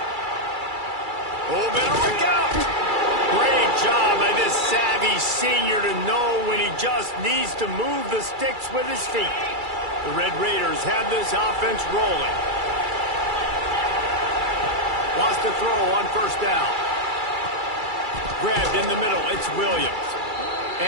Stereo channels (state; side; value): late; left; 2.3 ms